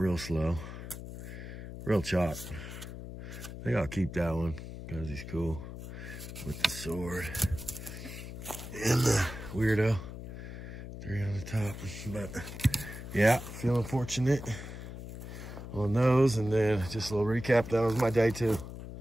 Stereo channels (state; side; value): noise; left; hum, 10 dB below the sound